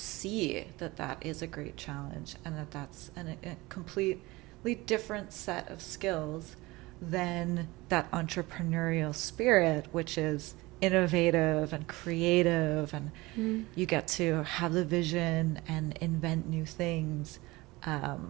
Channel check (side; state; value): left; quieter; 21.5 dB